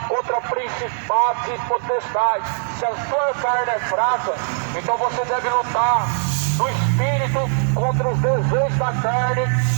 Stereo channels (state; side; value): silent; left; digital silence